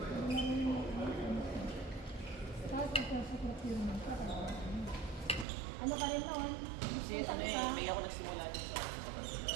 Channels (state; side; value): drops out; left; at 5.5 s